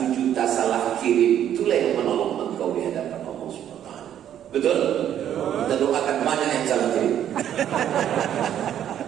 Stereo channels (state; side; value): quieter; left; 10.4 dB